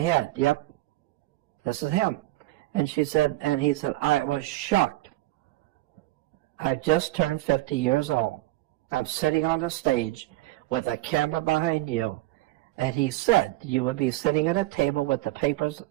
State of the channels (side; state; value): left; quieter; 17.8 dB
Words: Yep, this is him. And she said, and he said, I was shocked. I just turned 50 years old. I'm sitting on a stage with a camera behind you. And he said, you would be sitting at a table with the papers